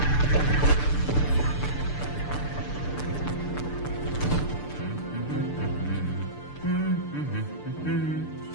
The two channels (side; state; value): right; late; 6.8 ms